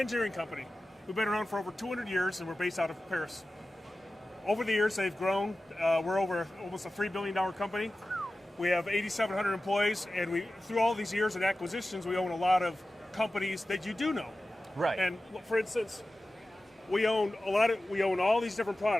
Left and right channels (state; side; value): normal; both; correlation 0.95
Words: engineering company. We've been around for over 200 years, and we're based out of Paris. Over the years, they've grown. We're over almost a $3 billion company. We have 8,700 employees, and through all these years and acquisitions, we own a lot of companies that you do know. Right. And for instance, we own all these different